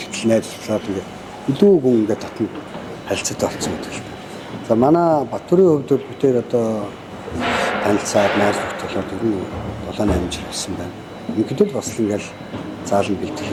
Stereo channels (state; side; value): identical; both; correlation 1.00